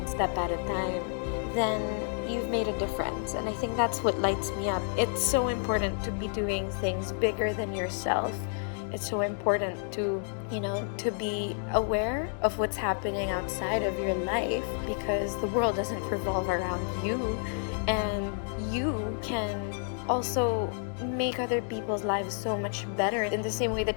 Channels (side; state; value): right; silent; 58 dB below the other